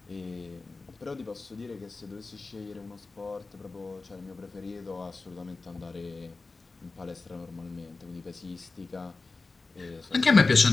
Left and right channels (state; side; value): quieter; right; 3.7 dB